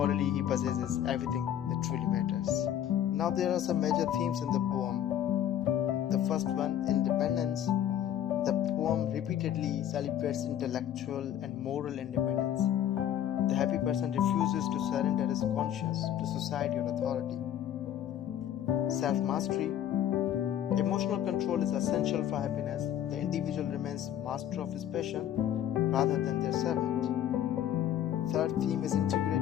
he possesses everything that truly matters. Now there are some major themes in the poem. The first one, independence. The poem repeatedly celebrates intellectual and moral independence. The happy person refuses to surrender his conscience to society or authority. Self-mastery. Emotional control is essential for happiness. The individual remains master of his passion rather than their servant. Third theme is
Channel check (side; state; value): right; quieter; 10.6 dB